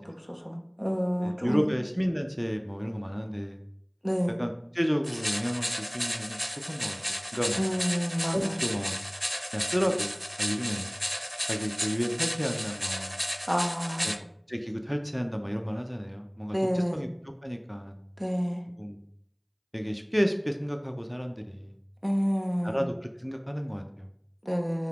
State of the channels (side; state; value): both; identical; correlation 1.00